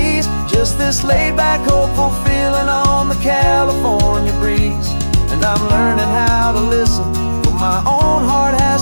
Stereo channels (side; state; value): both; inverted; correlation -1.00